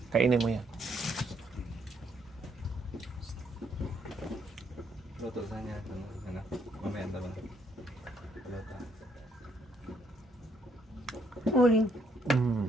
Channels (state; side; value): normal; both; correlation 0.72